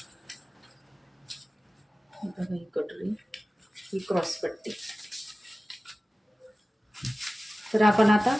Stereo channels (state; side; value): normal; both; correlation 0.96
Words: बघा, ही कटोरी, ही क्रॉस पट्टी. तर आपण आता